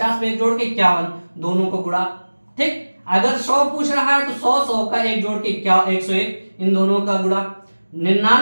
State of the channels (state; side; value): inverted; both; correlation -1.00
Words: में एक जोड़ के 51, दोनों को गुणा। ठीक, अगर 100 पूछ रहा है तो 100 100 का एक जोड़ के 101, इन दोनों का गुणा।